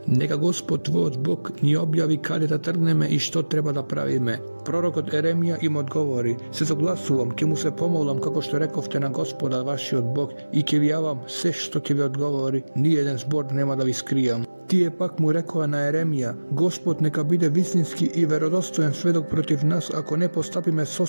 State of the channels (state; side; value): inverted; both; correlation -1.00